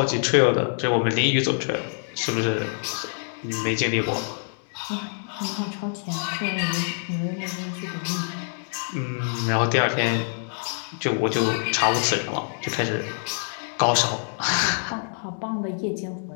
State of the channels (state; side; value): silent; right; 61 dB below the other